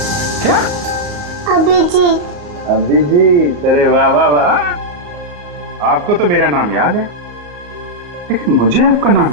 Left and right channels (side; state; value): left; late; 34 ms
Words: क्या? अभिजीत। अभिजीत, अरे वाह वाह वाह, आपको तो मेरा नाम याद है, लेकिन मुझे आपका नाम